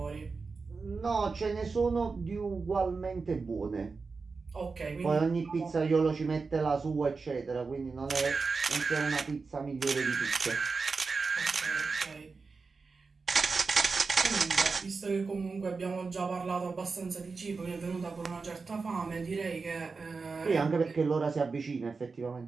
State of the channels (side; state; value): left; quieter; 4.5 dB